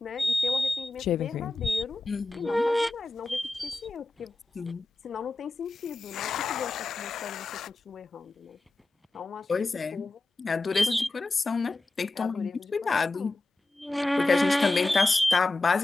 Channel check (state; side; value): quieter; right; 3.0 dB